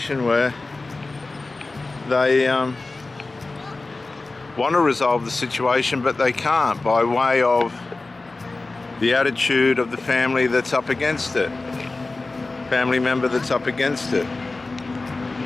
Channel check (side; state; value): right; quieter; 3.4 dB